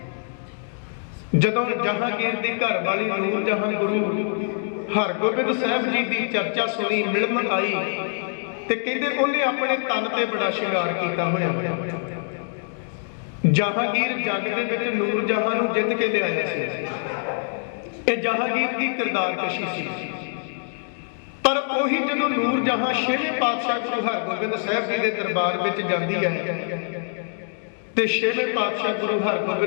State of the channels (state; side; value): silent; right; 62 dB below the other